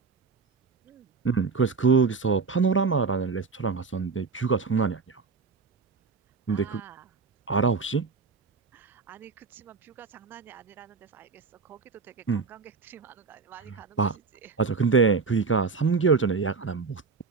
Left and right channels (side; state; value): left; quieter; 4.8 dB